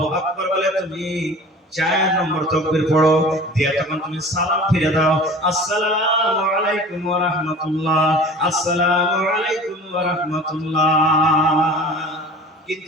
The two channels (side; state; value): both; normal; correlation 0.42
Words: আকবার বলে তুমি 4 নম্বর তাকবীর পড়ো দিয়ে তখন তুমি সালাম ফিরে দাও আসসালামু আলাইকুম ওয়া রাহমাতুল্লাহ আসসালামু আলাইকুম ওয়া রাহমাতুল্লাহ